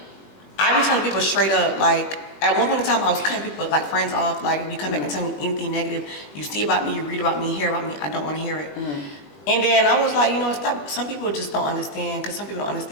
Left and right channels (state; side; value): late; right; 21 ms